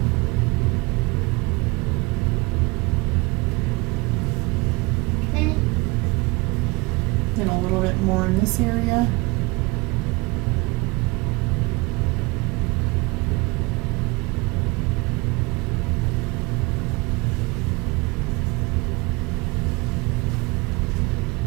Okay. Then a little bit more in this area.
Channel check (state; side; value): quieter; left; 25.2 dB